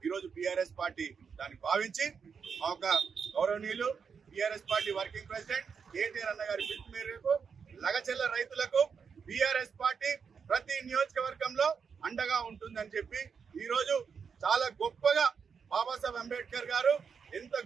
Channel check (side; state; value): left; quieter; 6.2 dB